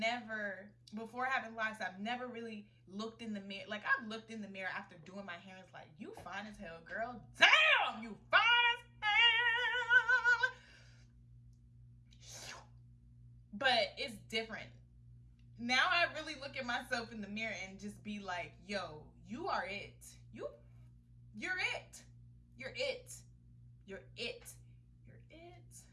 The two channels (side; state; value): both; identical; correlation 1.00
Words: before having locks, I've never really looked in the mirror. Like, I've looked in the mirror after doing my hair and it's like, you fine as hell, girl. Damn, you fine as hell. But it's different. Now I really look at myself in the mirror and just be like, yo, you are it. You're it. You're it. You're it. You're it.